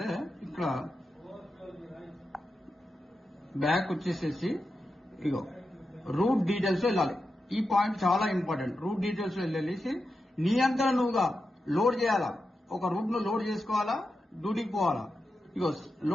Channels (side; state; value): both; normal; correlation 0.89